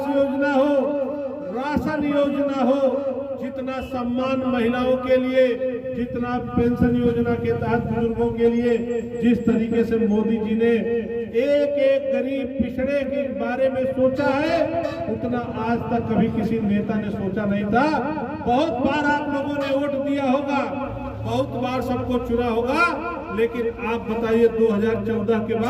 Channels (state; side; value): identical; both; correlation 1.00